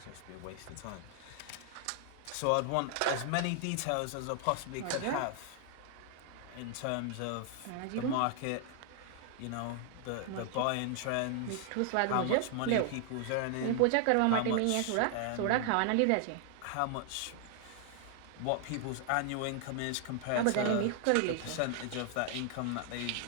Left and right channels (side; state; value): both; different; correlation 0.00